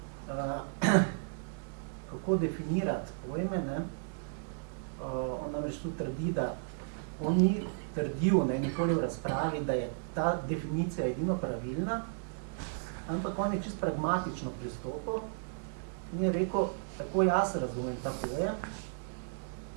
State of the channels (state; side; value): silent; left; digital silence